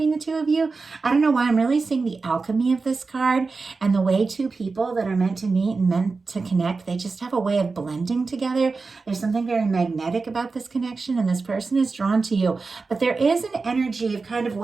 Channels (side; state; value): left; quieter; 4.2 dB